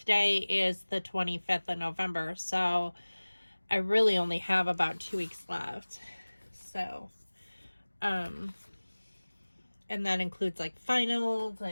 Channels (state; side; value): inverted; both; correlation -1.00